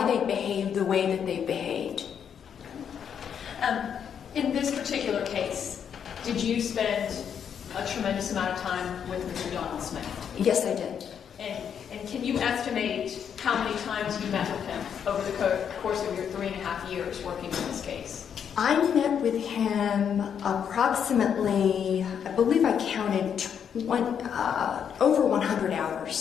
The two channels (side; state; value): right; quieter; 8.0 dB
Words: they behave the way that they behaved. In this particular case, did you spend a tremendous amount of time with Mr. Donald Smith? Yes, I did. And can you estimate how many times you met with him over the course of your 3.5 years working on this case? I met with him approximately, I believe I counted over 100